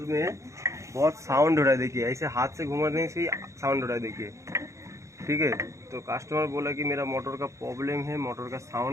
में बहुत साउंड हो रहा है। देखिए ऐसे हाथ से घुमाने से ही साउंड हो रहा है, देखिए ठीक है। तो कस्टमर बोला कि मेरा मोटर का प्रॉब्लम है, मोटर का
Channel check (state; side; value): late; left; 0.15 ms